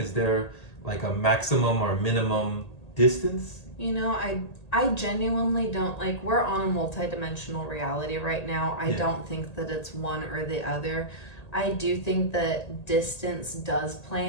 there, like, a maximum or minimum distance? You know, I genuinely don't, like, we're on a multidimensional reality right now. I don't think that it's one or the other. I do think that distance does play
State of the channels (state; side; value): late; right; 1.9 ms